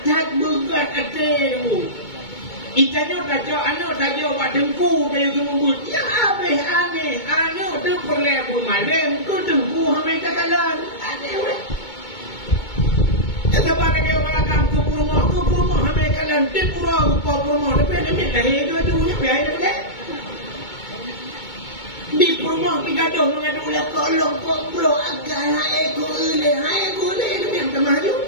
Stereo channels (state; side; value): late; right; 2.2 ms